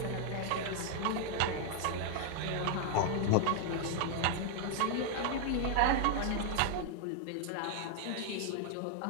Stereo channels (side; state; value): both; different; correlation 0.00